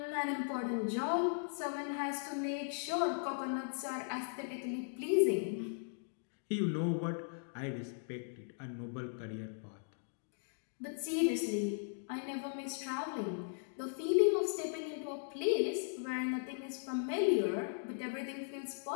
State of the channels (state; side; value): silent; right; digital silence